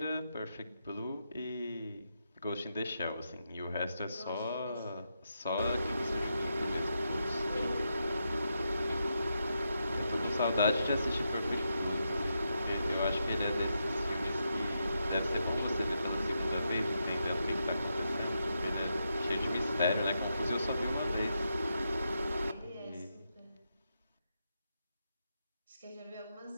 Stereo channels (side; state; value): both; inverted; correlation -0.84